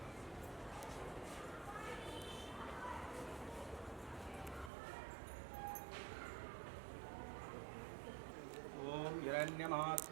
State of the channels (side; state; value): left; drops out; at 4.7 s